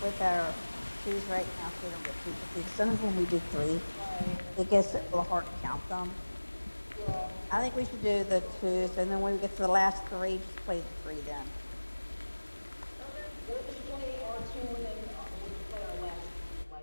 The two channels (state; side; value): inverted; both; correlation -1.00